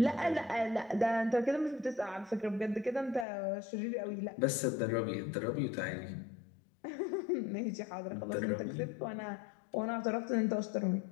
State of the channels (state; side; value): drops out; right; at 3.2 s